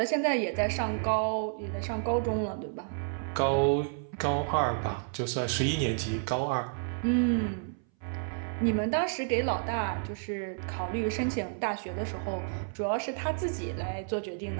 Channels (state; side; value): silent; left; 57 dB below the other